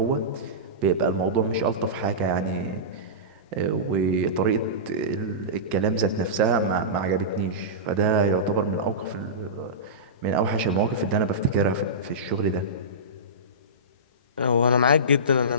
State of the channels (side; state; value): both; normal; correlation -0.20